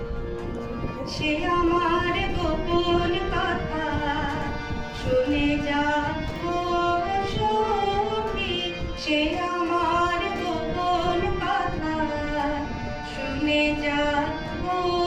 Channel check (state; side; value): identical; both; correlation 1.00